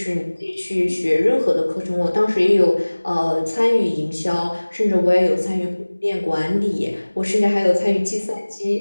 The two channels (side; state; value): both; inverted; correlation -1.00